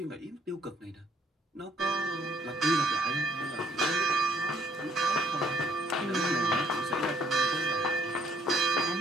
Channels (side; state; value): both; normal; correlation 0.65